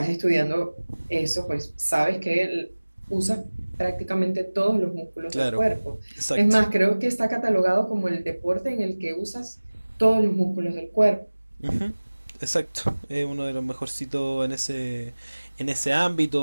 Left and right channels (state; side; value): inverted; both; correlation -1.00